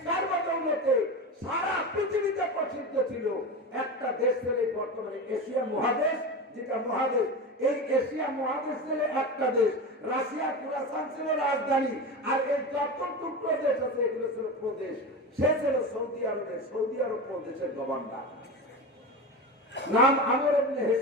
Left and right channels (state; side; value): normal; both; correlation 0.24